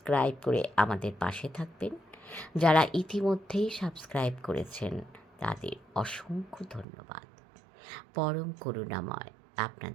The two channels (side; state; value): left; drops out; at 6.9 s